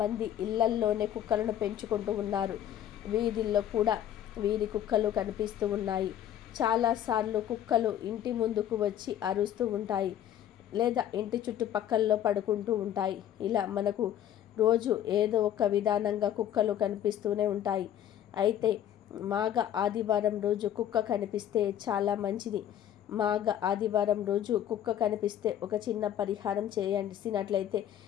ఇళ్లల్లోనే కుక్కలను పెంచుకుంటూ ఉన్నారు. వీధుల్లో కూడా వీధి కుక్కలు కనిపిస్తూ ఉన్నాయి. చాలాసార్లు కుక్కలు ఇంటి ముందుకు వచ్చి అరుస్తూ ఉంటాయి, లేదా ఇంటి చుట్టుపక్కల్లో పడుకుంటూ ఉంటాయి. ఇలా మనకు రోజు ఏదో ఒక విధానంగా కుక్కలు కనిపిస్తూనే ఉంటాయి. అయితే మాఘ ఆదివారం రోజు కుక్క కనిపిస్తే చాలా మంచిది. మాఘ ఆదివారం రోజు కుక్క కనిపిస్తే ఒక చిన్న పరిహారం చేసినట్లయితే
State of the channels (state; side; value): quieter; right; 10.8 dB